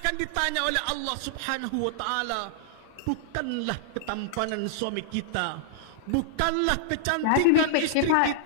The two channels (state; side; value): different; both; correlation -0.01